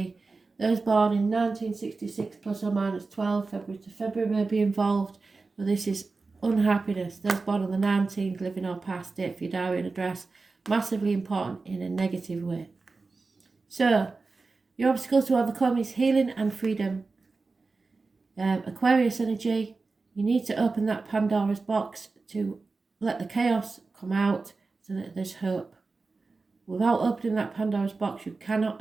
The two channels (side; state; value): left; quieter; 3.9 dB